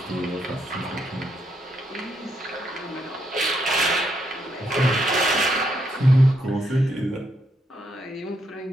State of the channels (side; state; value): both; normal; correlation 0.77